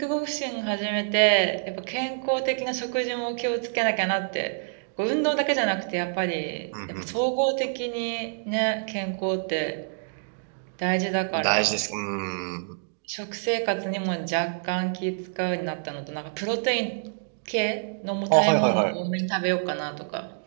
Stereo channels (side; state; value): left; silent; digital silence